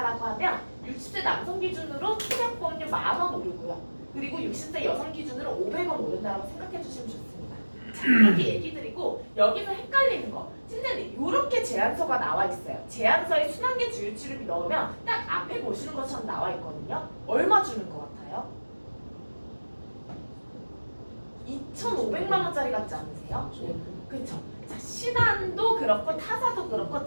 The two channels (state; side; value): inverted; both; correlation -1.00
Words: 하면 60세 남성 기준으로 소액보험료 10,000원 오르고요. 그리고 60세 여성 기준으로 500원 오른다라고 생각해 주시면 좋습니다. 자, 이렇게 얘기 드리고 여기서 헷갈리는 거 선생님 이렇게 제안서가 나와 있어요. 제안서에 순환계 주요치료비 넣으면 딱 앞에 보시는 것처럼 나와 있거든요. 얼마 주는 것 같아요? 2,500만 원짜리 같지 않으세요? 그쵸? 자, 신한도 그렇고 타사도 그렇고